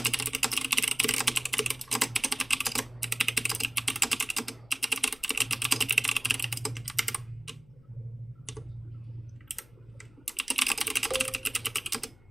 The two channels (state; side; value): noise; left; hum, 27 dB below the sound